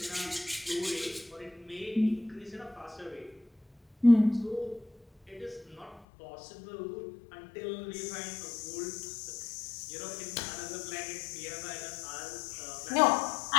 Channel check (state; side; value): drops out; right; at 6.1 s